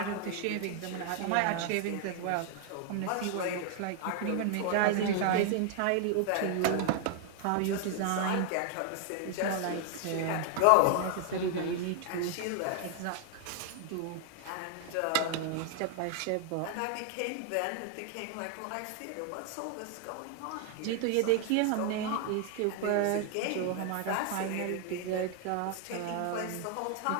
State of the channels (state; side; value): different; both; correlation 0.00